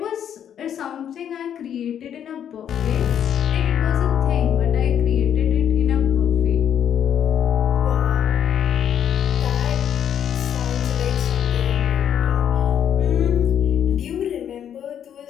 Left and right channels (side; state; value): right; quieter; 9.3 dB